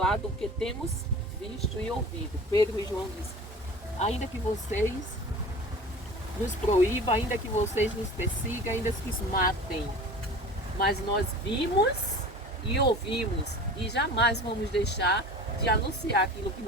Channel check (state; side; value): normal; both; correlation 0.39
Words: do que temos visto e ouvido. Pedro e João dizem: ainda que vocês nos proíbam, ainda que vocês nos persigam, ainda que nos matem, mas nós vimos e ouvimos e jamais vamos deixar de anunciar aquilo que